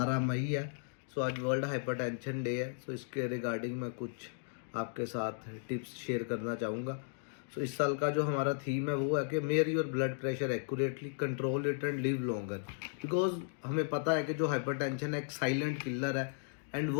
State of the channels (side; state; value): right; silent; digital silence